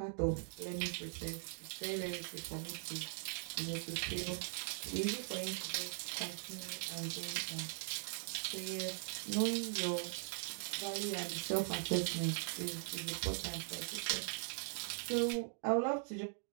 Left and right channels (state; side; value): silent; left; 50 dB below the other